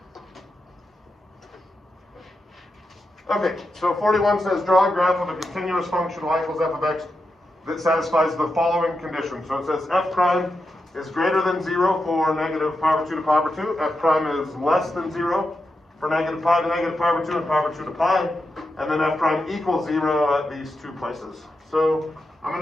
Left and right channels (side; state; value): both; normal; correlation 0.87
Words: Okay, so 41 says draw a graph of a continuous function y equals f of x that satisfies the following conditions. So it says f prime is greater than 0 for negative pi over 2 to pi over 2. F prime is less than 0 for negative pi to negative pi over 2 and pi over 2 to pi. And then f prime equals 0 at these two places. So I'm